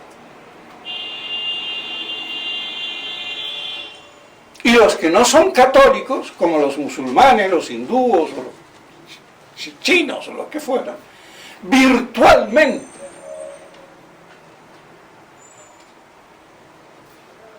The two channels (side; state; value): both; identical; correlation 1.00